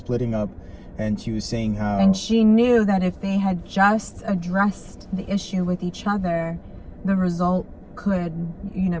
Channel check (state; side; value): identical; both; correlation 1.00